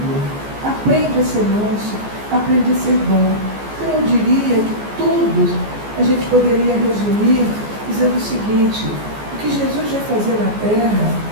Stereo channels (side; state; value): left; late; 14 ms